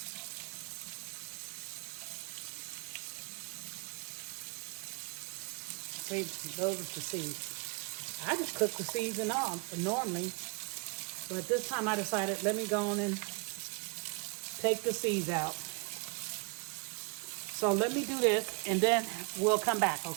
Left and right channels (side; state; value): left; quieter; 33.7 dB